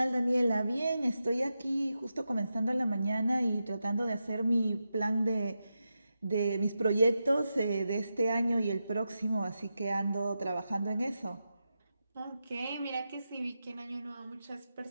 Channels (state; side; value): inverted; both; correlation -0.89